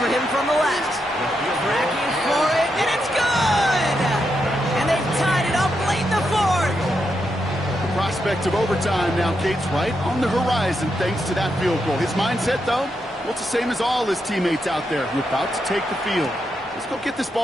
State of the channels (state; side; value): normal; both; correlation 0.83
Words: him from the left. Tracking for it, and it's good! And they've tied it up late in the 4th. The prospect of overtime now, Kate's right on the horizon thanks to that field goal. His mindset, though, well, it's the same as all his teammates out there. We're about to take the field. Let's go get this